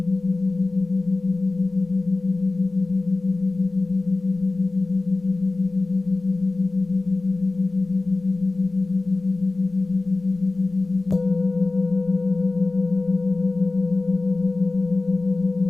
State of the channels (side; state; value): right; quieter; 3.3 dB